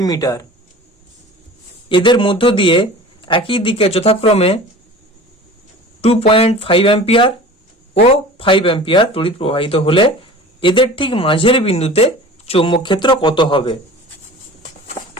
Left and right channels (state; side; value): normal; both; correlation 0.40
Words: মিটার, এদের মধ্য দিয়ে একই দিকে যথাক্রমে 2.5 অ্যাম্পিয়ার ও 5 অ্যাম্পিয়ার তড়িৎ প্রবাহিত হলে এদের ঠিক মাঝের বিন্দুতে চৌম্বক ক্ষেত্র কত হবে।